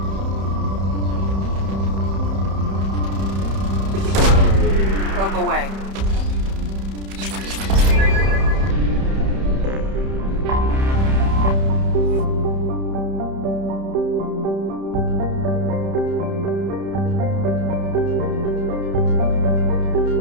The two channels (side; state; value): left; late; 31 ms